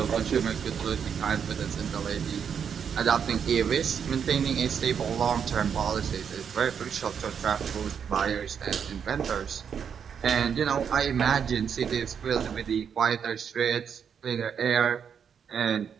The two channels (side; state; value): left; quieter; 7.4 dB